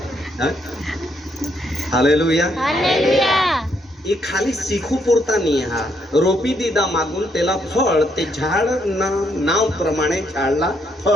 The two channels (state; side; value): normal; both; correlation 0.74